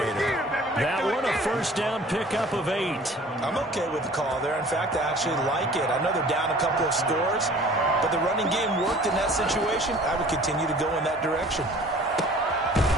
That one, a first down pickup of 8. I'm okay with the call there. In fact, I actually like it. I know they're down a couple of scores, but the running game worked in that situation. I would continue to go in that direction.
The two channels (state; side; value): normal; both; correlation 0.49